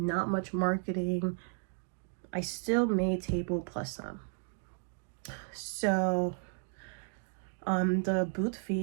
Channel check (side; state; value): left; silent; 55 dB below the other